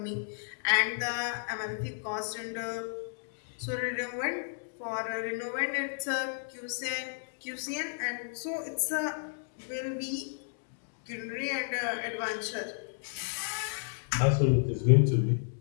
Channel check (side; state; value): right; silent; digital silence